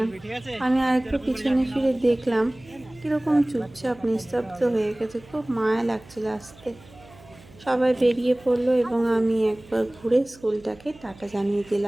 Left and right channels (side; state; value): right; noise; hum, 23 dB below the sound